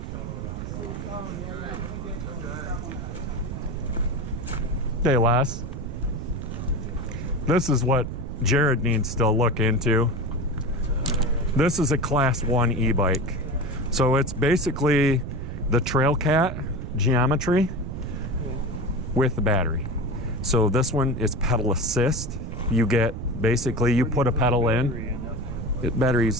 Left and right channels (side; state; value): right; noise; rumble, 6 dB below the sound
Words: Hey, Les. This is what Jared needs to look into. This is a Class 1 e-bike. So it's basically the Trail Cat geometry with the battery. So this one is pedal assist. You get, basically, you put a pedal in.